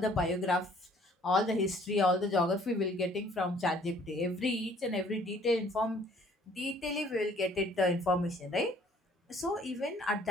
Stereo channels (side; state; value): both; normal; correlation 0.59